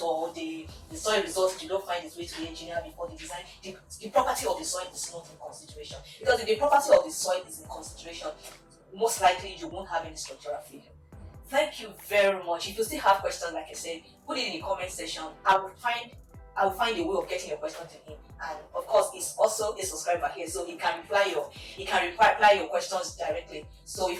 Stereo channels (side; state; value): both; identical; correlation 1.00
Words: or the soil results did not find its way to the engineer before the design. The property of the soil is not in consideration, because if the property of the soil is in consideration, most likely you won't have any structural failure. Thank you very much. If you still have questions, like I said, put it in the comment section. I will find a way of getting your question to him. And of course, he's also a subscriber here, so he can reply your questions directly. So if